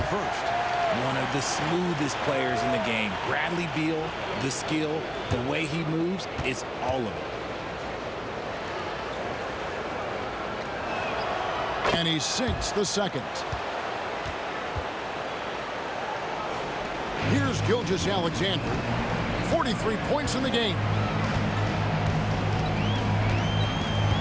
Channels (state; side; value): identical; both; correlation 1.00